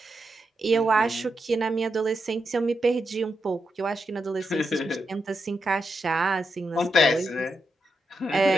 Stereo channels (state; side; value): normal; both; correlation 0.85